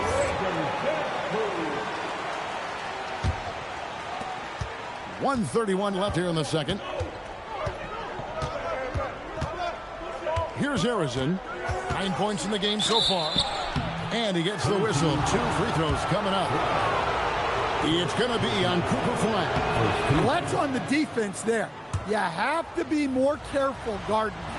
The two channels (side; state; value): both; identical; correlation 1.00